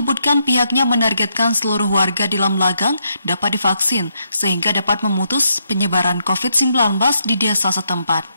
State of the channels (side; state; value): both; inverted; correlation -0.79